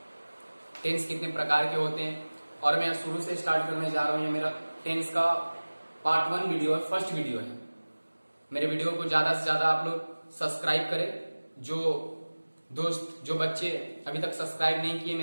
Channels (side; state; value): both; inverted; correlation -1.00